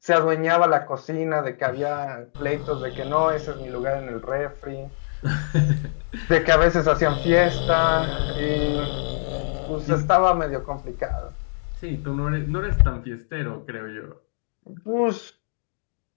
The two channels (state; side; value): silent; right; digital silence